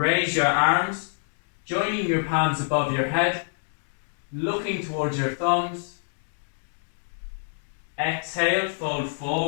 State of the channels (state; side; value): silent; right; digital silence